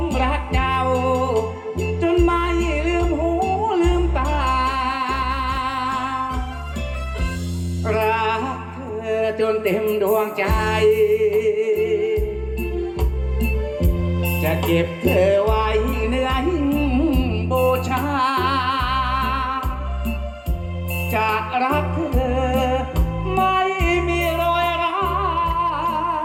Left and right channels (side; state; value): both; identical; correlation 1.00